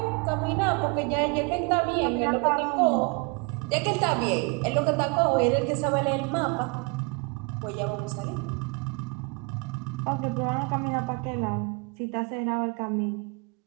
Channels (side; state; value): left; quieter; 30.8 dB